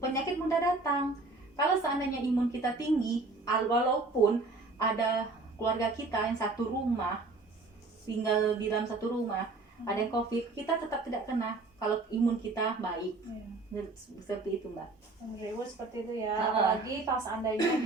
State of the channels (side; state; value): left; quieter; 3.4 dB